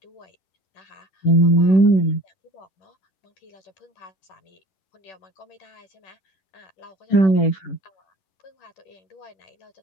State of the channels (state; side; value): late; right; 11 ms